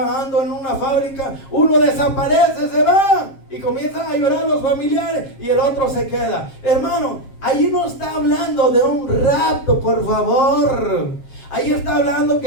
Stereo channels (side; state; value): right; late; 7.5 ms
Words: en una fábrica, uno desaparece, se va y comienzan a llorar los familiares y el otro se queda. Hermano, ahí no está hablando de un rapto, por favor. Ahí está hablando